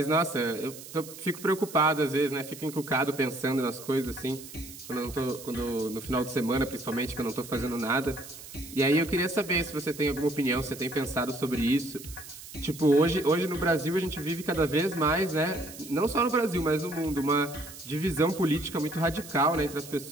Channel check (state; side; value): noise; right; hiss, 15 dB below the sound